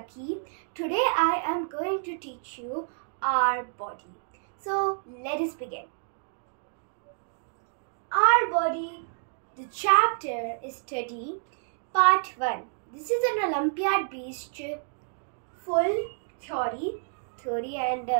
Today I am going to teach you our body. So let us begin. Our body, the chapter is study part 1. This is an Olympiad based full theory and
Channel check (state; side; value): silent; left; digital silence